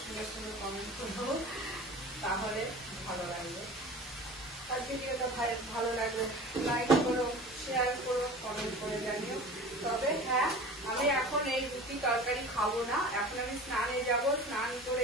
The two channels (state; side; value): normal; both; correlation 0.38